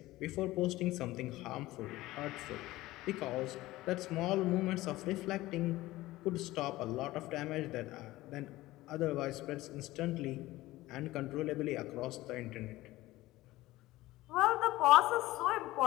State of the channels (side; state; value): right; quieter; 17.7 dB